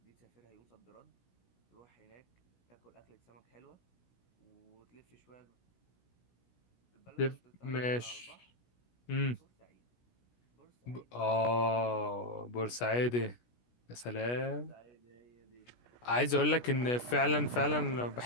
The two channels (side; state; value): right; late; 16 ms